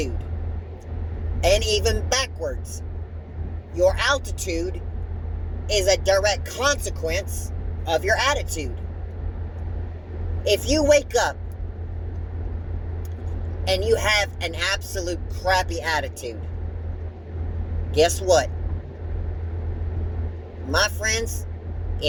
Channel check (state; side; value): identical; both; correlation 1.00